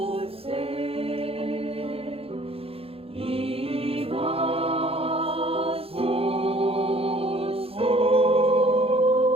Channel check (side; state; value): left; late; 0.28 ms